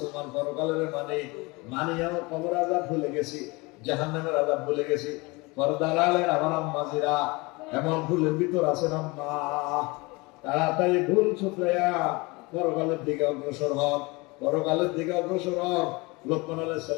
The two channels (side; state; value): right; quieter; 25.3 dB